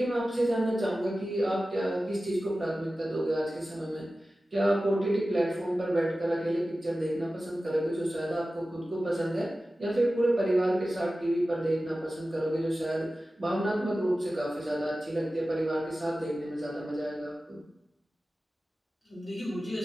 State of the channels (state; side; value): normal; both; correlation 0.95